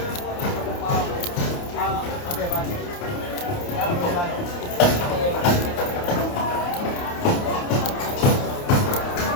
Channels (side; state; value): right; late; 28 ms